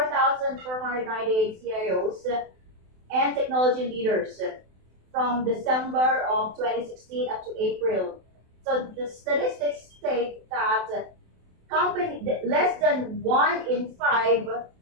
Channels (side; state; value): left; late; 27 ms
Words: CIOs and technology leaders from December of 2016 up to April. So the statistics state that less than 1 in 5,